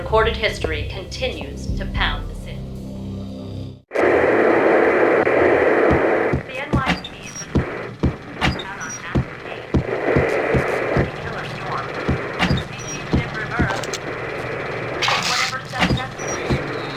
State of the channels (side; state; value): both; identical; correlation 1.00